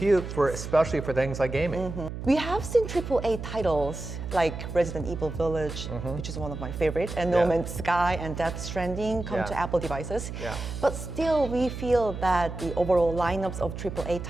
especially for things like gaming. We have seen AAA titles like Resident Evil Village, which is one of my favorite, and No Yeah. Man's Sky and Death Stranding come Yeah. to Apple devices. Yeah. But still, we feel that the overall lineups of AAA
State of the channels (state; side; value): noise; right; hum, 8 dB below the sound